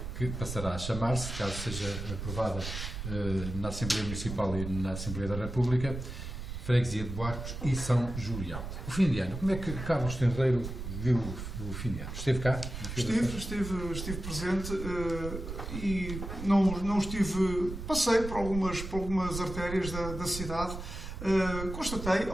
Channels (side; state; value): right; noise; rumble, 7 dB below the sound